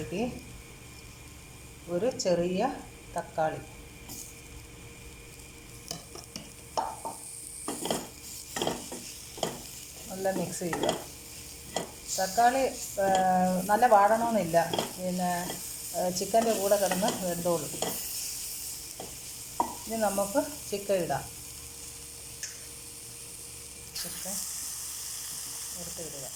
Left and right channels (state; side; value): identical; both; correlation 1.00